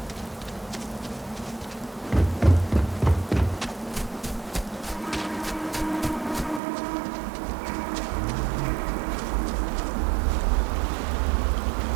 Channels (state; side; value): drops out; left; at 6.6 s